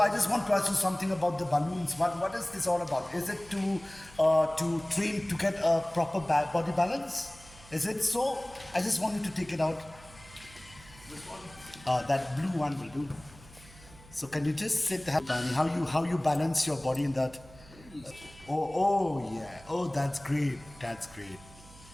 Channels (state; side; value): noise; right; hum, 22 dB below the sound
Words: I just want to ask you something about the balloons. What is this all about? Is it to train to get a proper body balance? Is it so? I just want you to take it out. This one. That blue one will do. So can you just sit Danny, how you balance your body in that? Oh yeah. Oh, that's great.